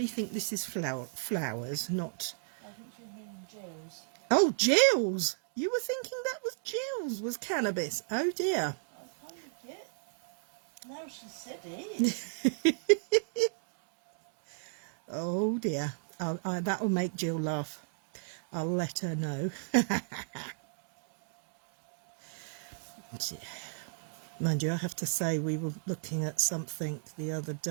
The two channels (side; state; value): left; silent; digital silence